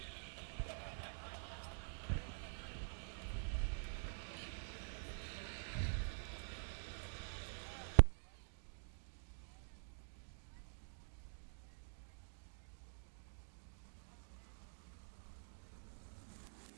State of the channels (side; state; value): left; silent; digital silence